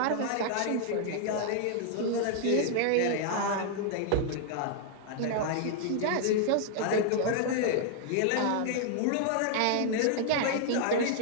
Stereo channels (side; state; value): both; different; correlation -0.01